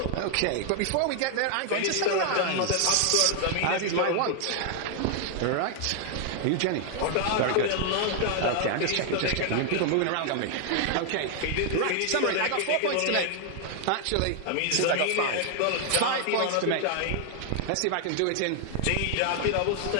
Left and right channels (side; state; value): both; different; correlation 0.00